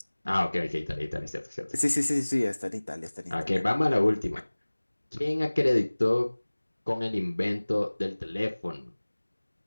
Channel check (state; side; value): inverted; both; correlation -1.00